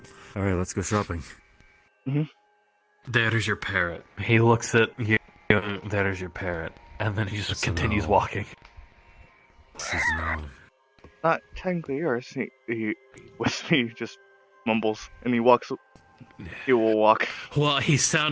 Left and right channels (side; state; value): both; identical; correlation 1.00